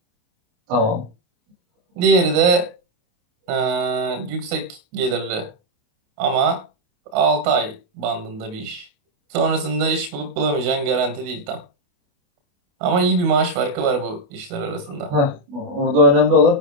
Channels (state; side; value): late; left; 28 ms